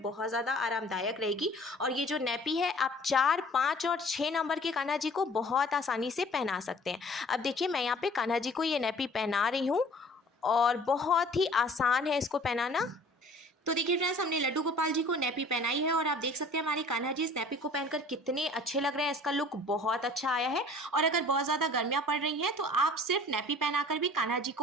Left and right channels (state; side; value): normal; both; correlation 0.50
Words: बहुत ज़्यादा आरामदायक रहेगी। और ये जो नैपी है, आप 4, 5 और 6 नंबर के कान्हा जी को बहुत आसानी से पहना सकते हैं। अब देखिए, मैं यहाँ पे कान्हा जी को ये नैपी पहना रही हूँ और बहुत ही आसान है इसको पहनाना। तो देखिए फ्रेंड्स, हमने लड्डू गोपाल जी को नैपी पहनाई है और आप देख सकते हैं हमारे कान्हा जी इस नैपी को पहनकर कितने अच्छे लग रहे हैं। इसका लुक बहुत अच्छा आया है। और अगर बहुत ज़्यादा गर्मियाँ पड़ रही हैं तो आप सिर्फ नैपी पहनाकर भी कान्हा जी